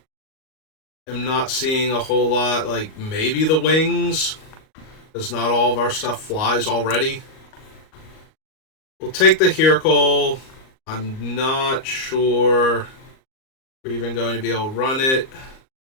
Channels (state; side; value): late; right; 38 ms